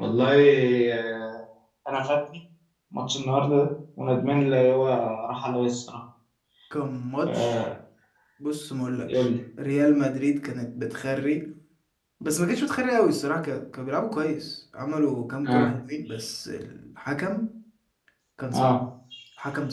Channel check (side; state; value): both; identical; correlation 1.00